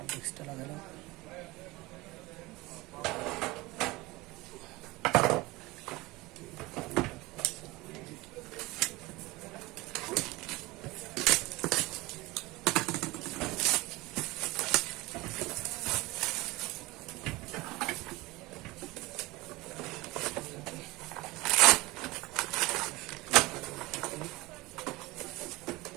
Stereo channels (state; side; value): quieter; left; 21.3 dB